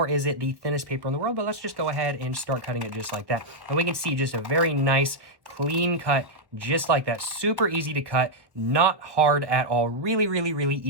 is it the thinnest paper in the world, but let's just go ahead and start cutting it just like that. And we can see just a very nice, clean cut, just like that. Super easy to cut, not hard at all. Really, really, really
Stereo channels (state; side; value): late; left; 1.3 ms